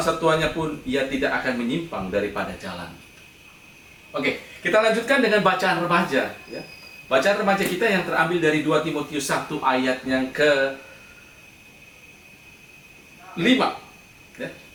tuanya pun ia tidak akan menyimpang daripada jalan. Oke, kita lanjutkan dengan bacaan remaja ya. Bacaan remaja kita yang terambil dari 2 Timotius 1 ayat yang ke-5 ya.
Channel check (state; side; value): identical; both; correlation 1.00